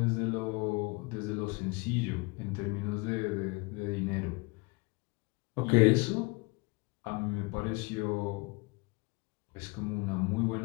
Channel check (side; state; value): right; quieter; 27.5 dB